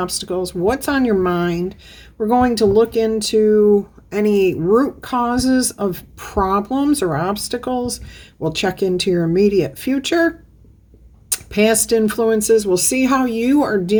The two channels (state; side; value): identical; both; correlation 1.00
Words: what's on your mind. We're going to look into any root causes of problems or obstacles. We'll check into your immediate future, past influences. We'll see how you are